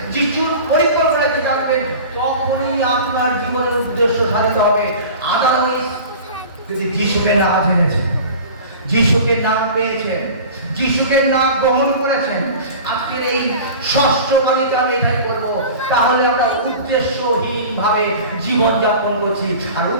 যিশুর পরিকল্পনাকে জানবেন, তখনই আপনার জীবনের উদ্দেশ্য সাধিত হবে। আদারওয়াইজ যদি যিশুকে না জেনেছেন, যিশুকে না পেয়েছেন, যিশুকে না গ্রহণ করেছেন, আজকের এই ষষ্ঠ বাণীতে আমি এটাই করবো, তাহলে আমরা উদ্দেশ্যহীন ভাবে জীবন যাপন করছি। আর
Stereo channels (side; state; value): both; inverted; correlation -0.38